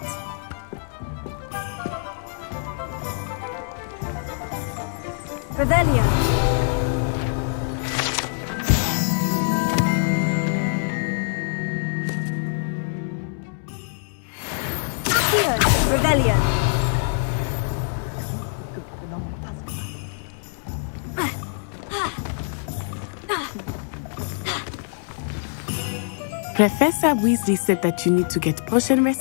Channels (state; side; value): silent; right; digital silence